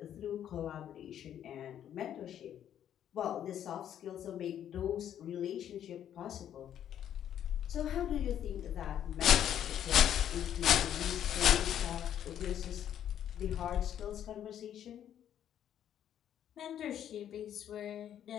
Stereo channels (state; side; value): quieter; right; 10.2 dB